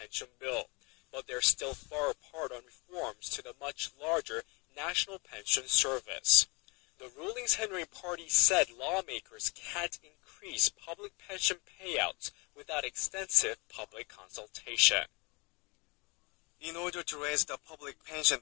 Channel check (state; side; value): quieter; right; 28.4 dB